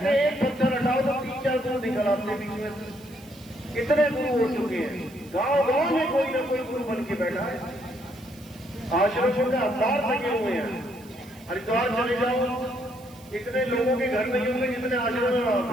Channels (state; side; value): noise; right; hiss, 24 dB below the sound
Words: हैं एक पत्थर हटाओ तो 3-4 गुरु निकल आते बीच में से, कितने गुरु हो चुके हैं, गांव गांव में कोई ना कोई गुरु बन के बैठा है, आश्रमों के अवतार लगे हुए हैं। हरिद्वार चले जाओ, इतने लोगों के घर नहीं होंगे जितने आश्रम में वहां